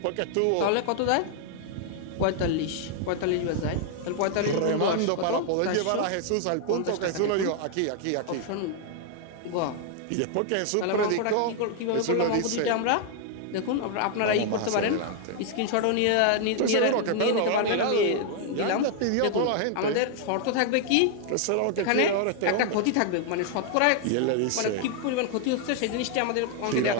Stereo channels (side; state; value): both; different; correlation 0.00